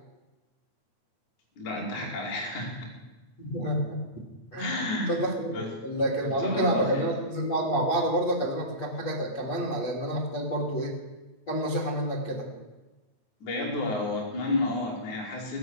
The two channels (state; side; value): late; right; 8.4 ms